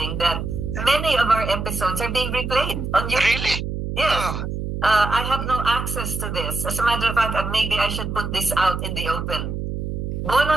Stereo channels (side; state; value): right; noise; hum, 4 dB below the sound